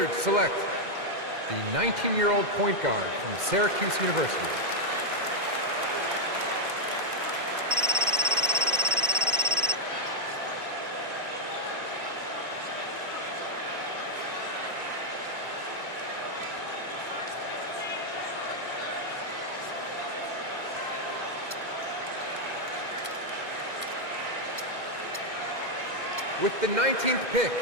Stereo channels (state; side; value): late; left; 2.1 ms